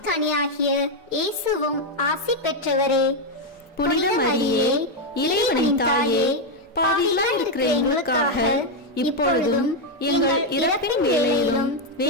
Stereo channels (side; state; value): both; normal; correlation 0.03